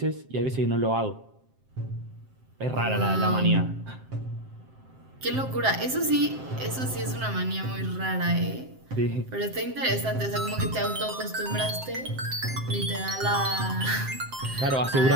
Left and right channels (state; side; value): late; left; 7.6 ms